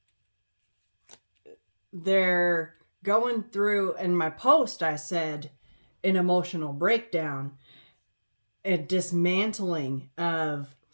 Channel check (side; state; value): both; inverted; correlation -1.00